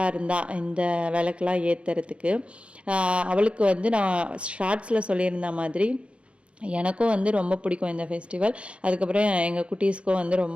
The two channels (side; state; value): left; late; 0.060 ms